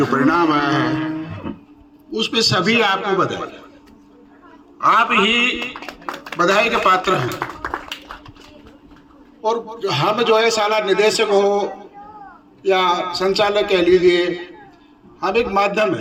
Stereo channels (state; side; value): identical; both; correlation 1.00